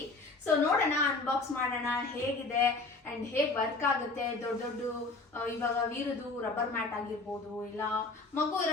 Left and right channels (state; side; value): quieter; right; 3.6 dB